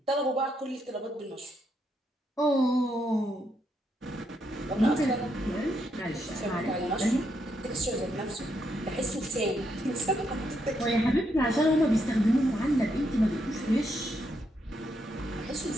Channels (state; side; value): normal; both; correlation 0.78